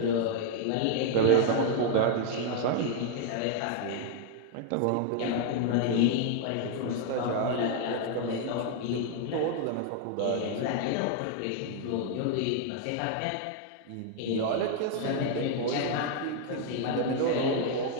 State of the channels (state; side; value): different; both; correlation 0.00